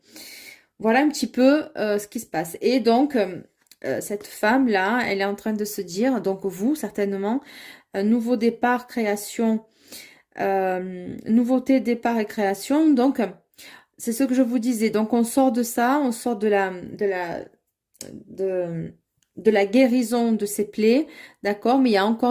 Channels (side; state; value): both; identical; correlation 1.00